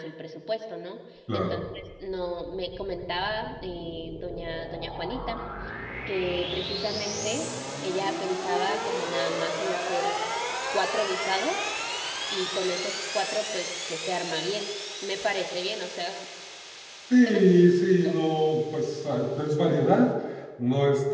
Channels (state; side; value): identical; both; correlation 1.00